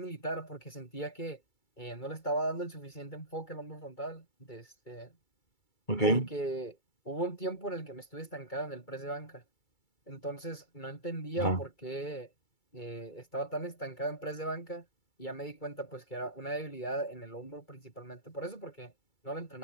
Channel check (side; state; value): right; late; 2.3 ms